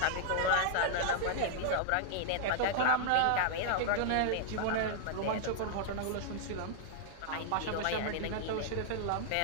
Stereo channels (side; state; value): both; different; correlation -0.01